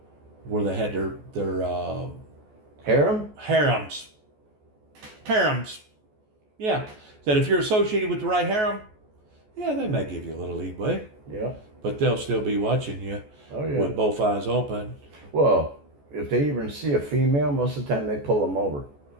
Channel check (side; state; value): left; late; 14 ms